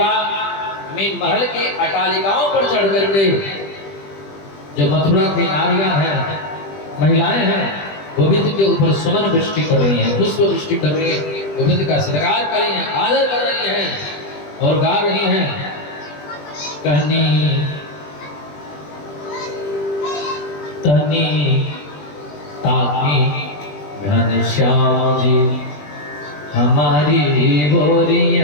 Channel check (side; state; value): right; late; 20 ms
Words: में महल के अटालिकाओं पर चढ़ करके जो मथुरा की नारियां हैं, महिलाएं हैं, गोविंद के ऊपर सुमन वृष्टि कर रही हैं, पुष्प वृष्टि कर रही हैं, गोविंद का श्रृंगार कर रही हैं, आदर कर रही हैं और गा रही हैं। कहनी तनी ताकी घनश्याम जी हमारी